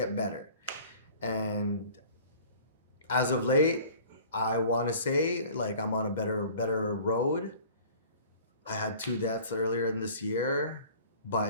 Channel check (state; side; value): inverted; both; correlation -0.47